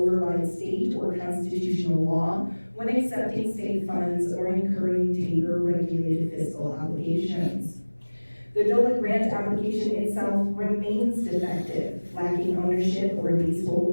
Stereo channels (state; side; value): inverted; both; correlation -1.00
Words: state or constitutional law when accepting state funds or incurring taper-regulated fiscal obligations. The Dole grant application itself remains defective, lacking ownership or